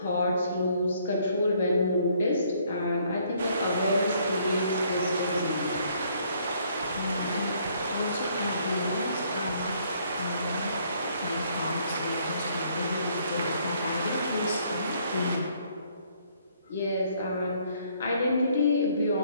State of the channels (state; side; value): inverted; both; correlation -0.66